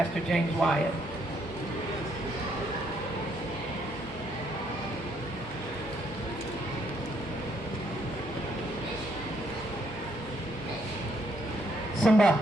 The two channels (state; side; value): normal; both; correlation 0.71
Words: James Wyatt. Simba.